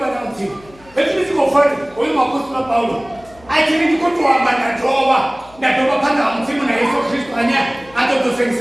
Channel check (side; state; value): left; noise; hum, 25 dB below the sound